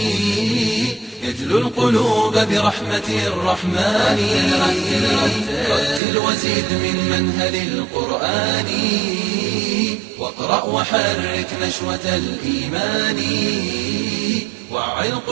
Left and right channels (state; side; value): drops out; left; at 6.0 s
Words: يجلو القلوب برحمة الرحمن رتل وزيد من منهل القرآن واقرأ وحرك نشوة الإيمان وعي